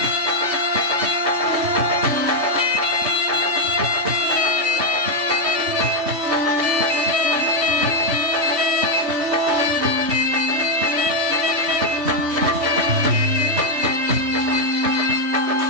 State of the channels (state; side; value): late; left; 3.2 ms